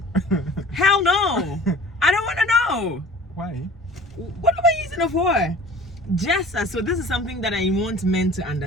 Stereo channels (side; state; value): both; normal; correlation 0.45